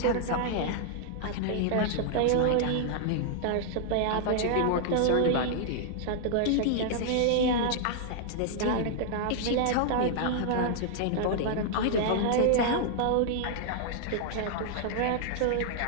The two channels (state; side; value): different; both; correlation -0.01